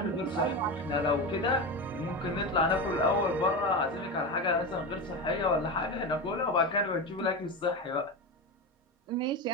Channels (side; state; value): both; normal; correlation 0.20